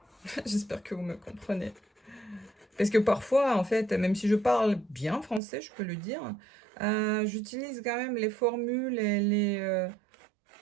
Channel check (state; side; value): drops out; left; at 5.4 s